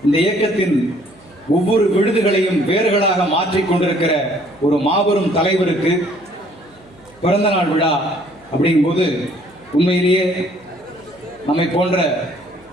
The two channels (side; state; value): right; noise; hum, 28 dB below the sound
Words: இந்த இயக்கத்தின் ஒவ்வொரு விழுதுகளையும் வேர்களாக மாற்றிக் கொண்டிருக்கிற ஒரு மாபெரும் தலைவருக்கு பிறந்தநாள் விழா அப்படிங்கும்போது உண்மையிலேயே நம்மை போன்ற